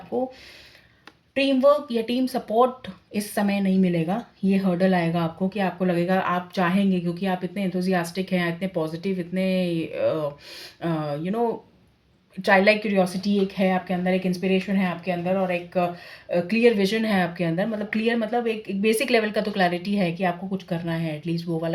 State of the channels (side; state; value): both; identical; correlation 1.00